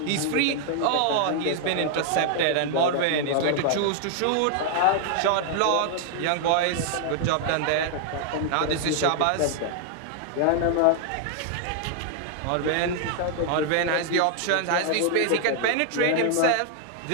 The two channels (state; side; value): different; both; correlation 0.00